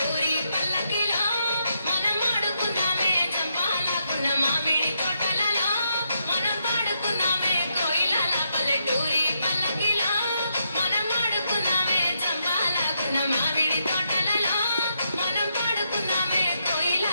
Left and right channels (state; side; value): inverted; both; correlation -0.80